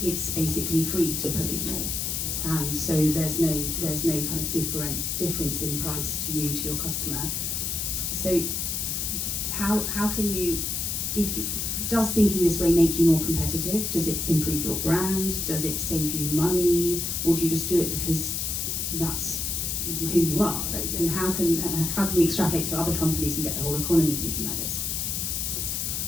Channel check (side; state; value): left; noise; hiss, 1 dB below the sound